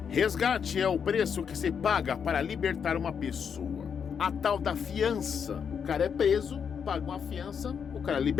resgate é o preço que se paga para libertar uma pessoa. A tal da fiança. O cara é preso, paga uma fiança, o cara é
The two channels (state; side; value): quieter; right; 7.0 dB